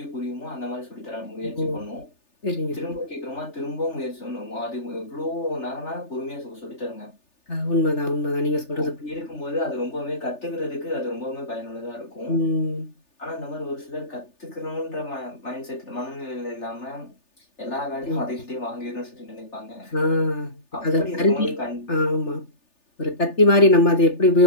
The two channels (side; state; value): right; late; 3.4 ms